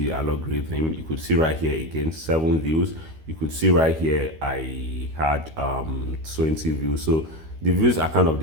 algorithm. You could see right here again 7 views. You could see right here I had 20 views. So the views are kind of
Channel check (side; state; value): left; late; 13 ms